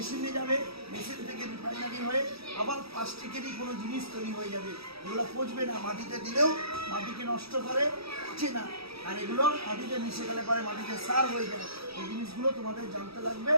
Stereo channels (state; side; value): late; left; 0.77 ms